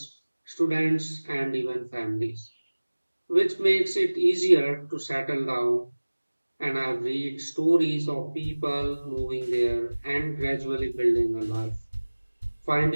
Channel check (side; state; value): both; inverted; correlation -1.00